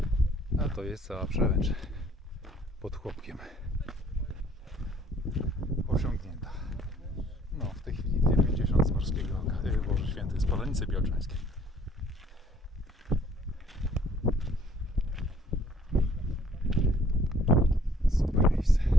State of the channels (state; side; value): normal; both; correlation 0.60